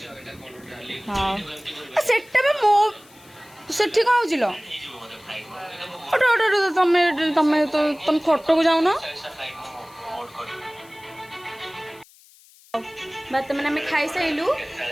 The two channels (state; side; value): noise; left; hiss, 26 dB below the sound